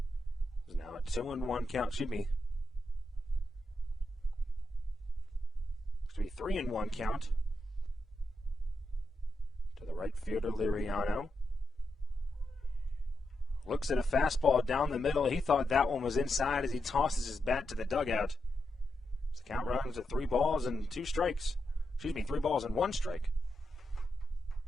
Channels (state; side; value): normal; both; correlation 0.85